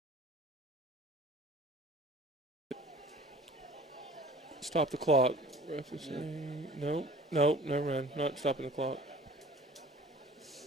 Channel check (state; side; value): normal; both; correlation 0.46